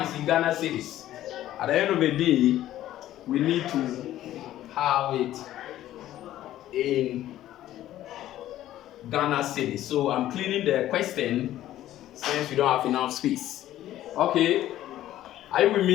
it's in Ghana cedis. At the end of the day, we need to have it in Ghana cedis. So I'm cleaning the question since we don't have enough space. Okay, are you with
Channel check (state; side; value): quieter; right; 13.4 dB